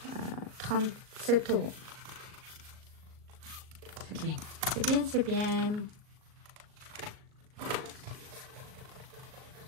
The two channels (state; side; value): late; left; 38 ms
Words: 37 €. C'est bien. C'est bien, c'est bien.